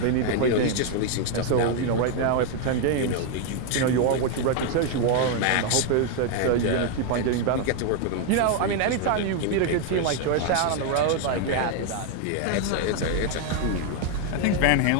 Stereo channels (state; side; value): different; both; correlation 0.00